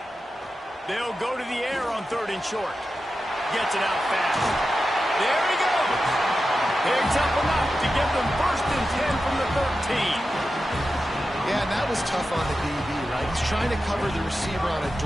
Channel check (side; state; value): both; normal; correlation 0.91